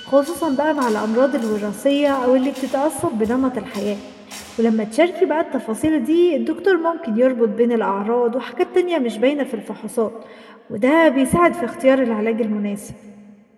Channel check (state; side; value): identical; both; correlation 1.00